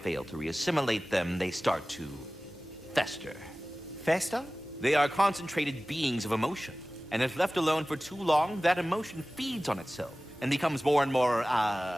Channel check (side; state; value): both; normal; correlation 0.97